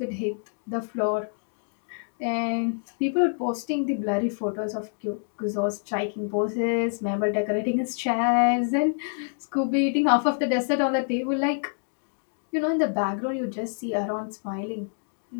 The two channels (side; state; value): right; silent; digital silence